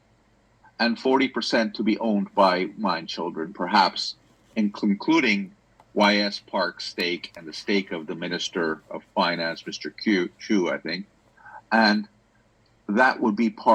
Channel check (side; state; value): both; identical; correlation 1.00